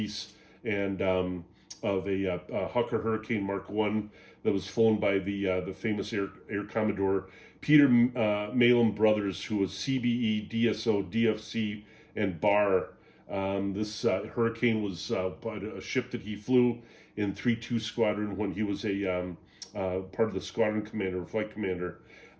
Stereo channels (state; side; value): identical; both; correlation 1.00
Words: and of a Hawker Hurricane Mark I that was flown by the famous Air Commodore Peter Malin Brothers, who was CBE, DSO, DFC, and BAR. This Hurricane was a ship that he flew in 3-2 Squadron when he was a part of the squadron commander, or flight commander.